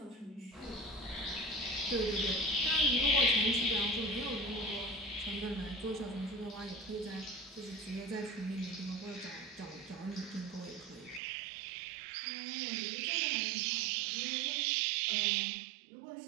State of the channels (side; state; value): left; drops out; at 11.2 s